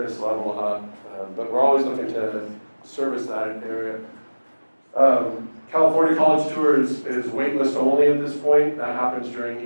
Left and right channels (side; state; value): both; inverted; correlation -1.00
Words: level up. But we're always looking to service that area. California College Tour is waitlist only at this point. That happens during